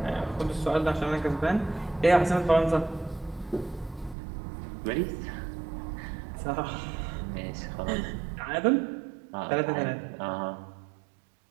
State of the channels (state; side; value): drops out; left; at 4.2 s